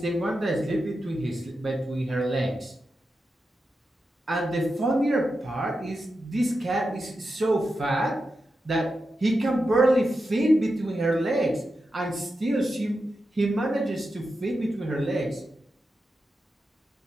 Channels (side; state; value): both; normal; correlation 0.89